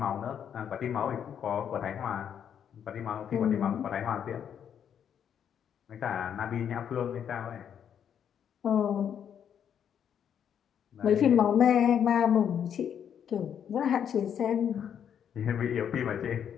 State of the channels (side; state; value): right; quieter; 8.6 dB